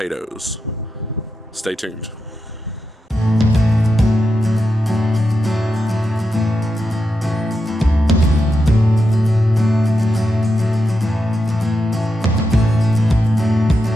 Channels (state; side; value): normal; both; correlation 0.87